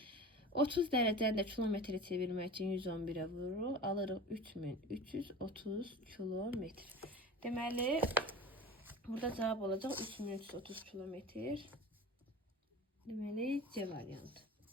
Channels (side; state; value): both; normal; correlation 0.34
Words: 30 dərəcəni də kilometrə çevirmək üçün 111-ə vururuq. Alırıq 3330 kilometr. Deməli, burada cavab olacaq 3330 kilometr. Deməli, C variantı.